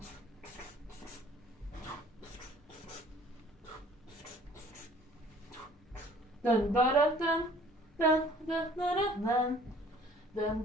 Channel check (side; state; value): both; normal; correlation 0.53